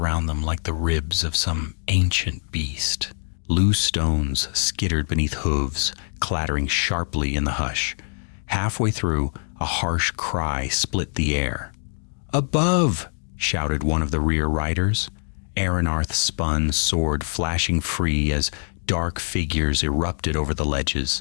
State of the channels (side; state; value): right; silent; digital silence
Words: them like the ribs of some ancient beast. Loose stones skittered beneath hooves, clattering sharply in the hush. Halfway through, a harsh cry split the air. "Above!" shouted one of the rear riders. Aranarth spun, sword flashing free as dark figures erupted over the